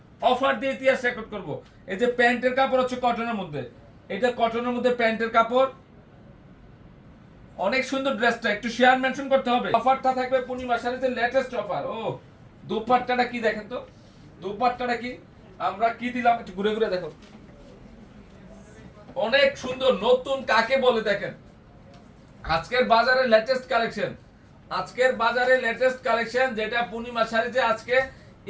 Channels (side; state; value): both; identical; correlation 1.00